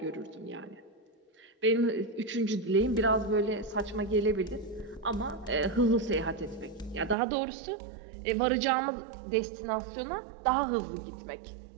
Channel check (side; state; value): left; drops out; at 7.2 s